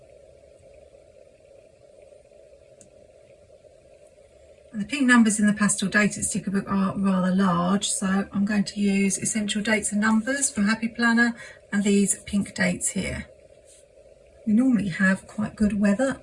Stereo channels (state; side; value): identical; both; correlation 1.00